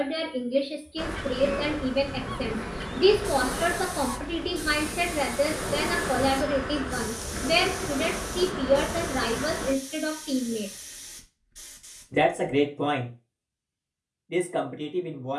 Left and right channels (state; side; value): identical; both; correlation 1.00